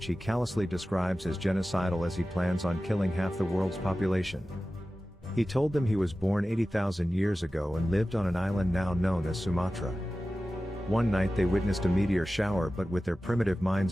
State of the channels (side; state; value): both; normal; correlation 0.95